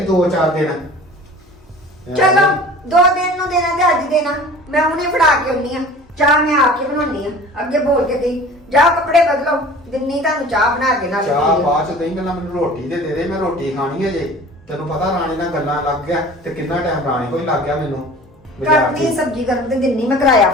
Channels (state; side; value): normal; both; correlation 0.43